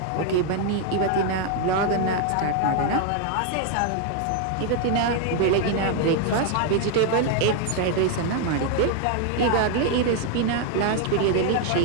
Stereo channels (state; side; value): different; both; correlation 0.00